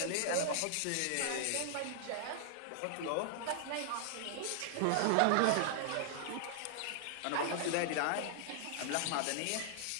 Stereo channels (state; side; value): different; both; correlation -0.01